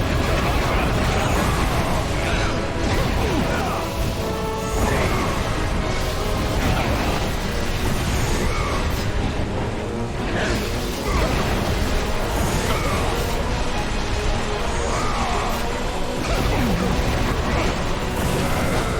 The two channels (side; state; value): both; identical; correlation 1.00